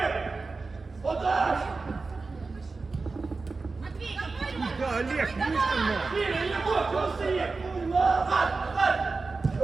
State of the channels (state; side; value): quieter; left; 4.0 dB